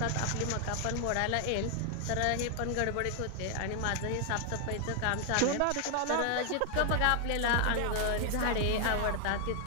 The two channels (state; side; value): different; both; correlation 0.00